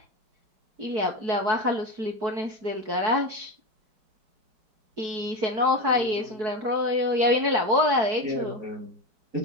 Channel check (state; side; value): late; left; 4.6 ms